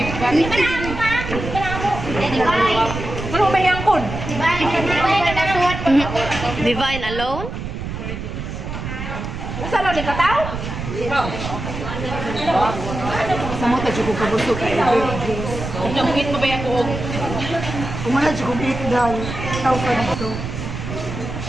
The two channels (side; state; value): right; noise; rumble, 6 dB below the sound